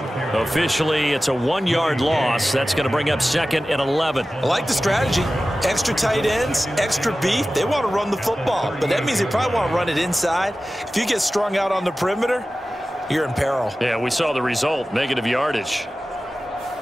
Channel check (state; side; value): normal; both; correlation 0.95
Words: Officially, it's a 1-yard loss. That's going to bring up 2nd and 11. I like the strategy. Extra tight ends, extra beef. They want to run the football, but that means they probably want to run it inside. If you get strung out on the perimeter, you're in peril. Yeah, we saw the result, negative yardage.